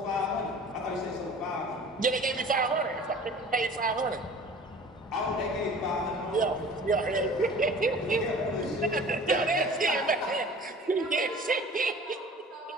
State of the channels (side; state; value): both; normal; correlation 0.44